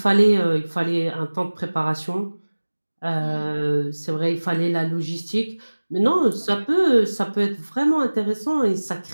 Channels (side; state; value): both; inverted; correlation -1.00